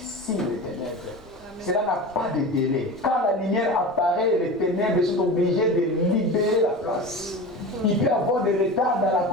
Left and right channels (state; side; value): normal; both; correlation 0.31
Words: les ténèbres. Cela n'a pas de délai. Quand la lumière apparaît, les ténèbres sont obligées de libérer la place. Il peut y avoir des retards dans